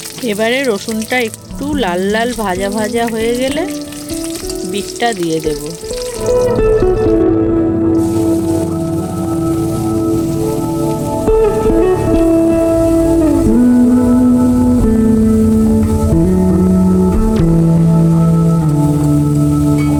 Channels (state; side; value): identical; both; correlation 1.00